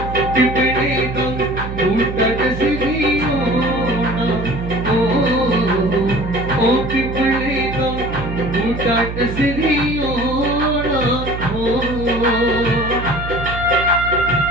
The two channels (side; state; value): right; noise; hum, 7 dB below the sound